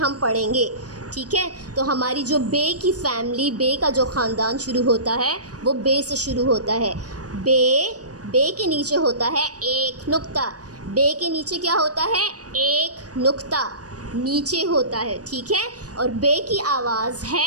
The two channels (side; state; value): left; late; 0.68 ms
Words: पढ़ेंगे, ठीक है। तो हमारी जो बे की फैमिली, बे का जो ख़ानदान शुरू होता है वो बे से शुरू होता है। बे, बे के नीचे होता है एक नुक्ता, बे के नीचे क्या होता है? एक नुक्ता नीचे होता है, ठीक है। और बे की आवाज़